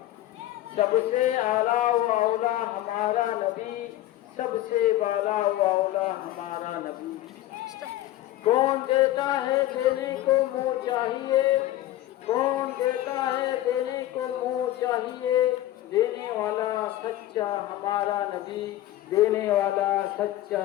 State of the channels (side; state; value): right; quieter; 14.6 dB